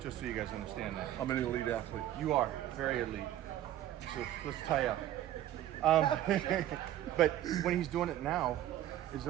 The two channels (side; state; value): left; quieter; 12.8 dB